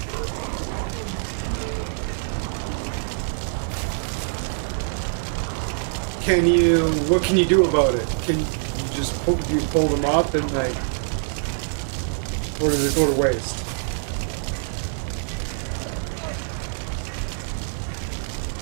What can you do about it? Can you just pull them up and like, or does it go to waste?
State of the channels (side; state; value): left; silent; 62 dB below the other